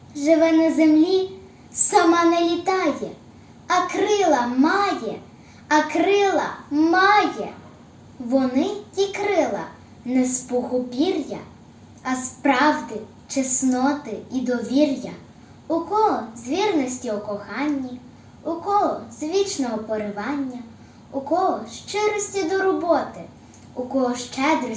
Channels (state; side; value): identical; both; correlation 1.00